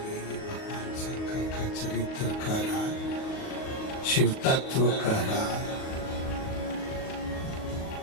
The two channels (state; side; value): late; right; 38 ms